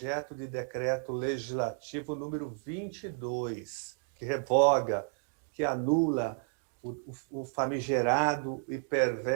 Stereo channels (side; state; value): left; silent; 56 dB below the other